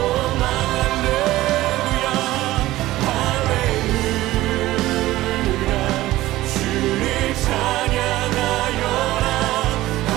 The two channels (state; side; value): quieter; left; 16.6 dB